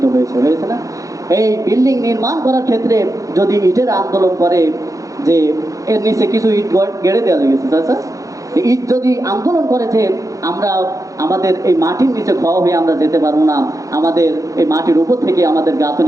হয়েছে না, এই বিল্ডিং নির্মাণ করার ক্ষেত্রে যদি ইটের আন্দোলন করে যে এর নিচে কিছু ইট গেড়ে দেওয়া গেছে, আচ্ছা, ইট যদি আন্দোলন করে যে আমাদের এই মাটির নিচে ক্ষয় হয়ে আমরা যেতে পারবো না, আমাদের এই মাটির উপর থেকে আমাদের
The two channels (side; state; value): left; late; 0.16 ms